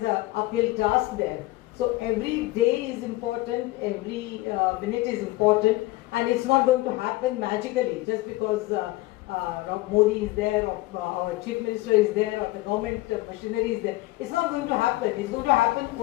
a uphill task there. So every day is important, every minute is important, and it's not going to happen magically just because Modi is there, or our Chief Minister is there, or the government machinery is there. It's not going to happen. It's going to happen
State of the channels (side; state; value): right; quieter; 19.3 dB